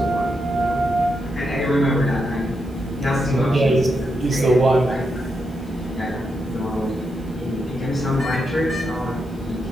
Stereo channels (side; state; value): right; noise; hiss, 29 dB below the sound